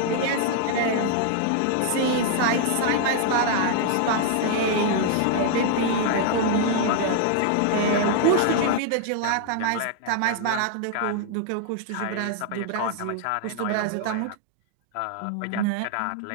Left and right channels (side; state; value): both; different; correlation 0.00